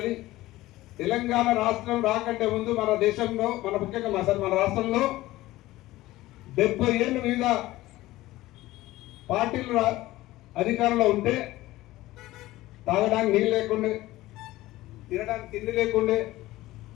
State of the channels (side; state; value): right; quieter; 17.2 dB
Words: తెలంగాణ రాష్ట్రం రాకంటే ముందు మన దేశంలో, ముఖ్యంగా మన రాష్ట్రంలో 70 ఏళ్ళు మీద పార్టీలు అధికారంలో ఉంటే తాగడానికి నీళ్ళు లేకుండే, తినడానికి తిండి లేకుండే,